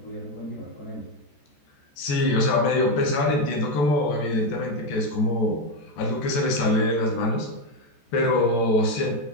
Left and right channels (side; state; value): right; late; 14 ms